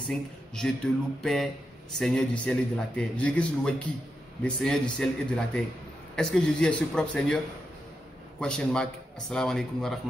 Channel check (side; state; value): both; normal; correlation 0.86